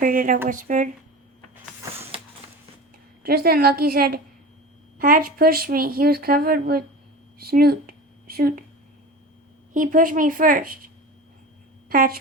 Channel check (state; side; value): normal; both; correlation 0.33